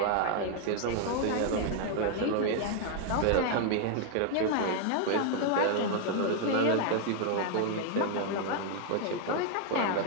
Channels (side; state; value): both; different; correlation 0.00